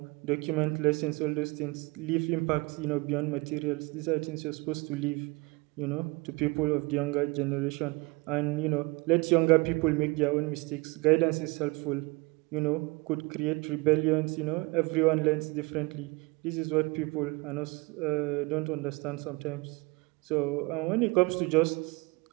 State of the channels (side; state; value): left; quieter; 25.5 dB